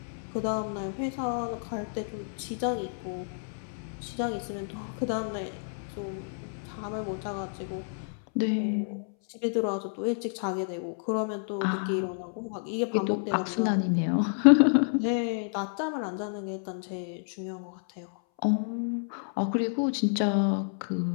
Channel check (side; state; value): right; silent; 58 dB below the other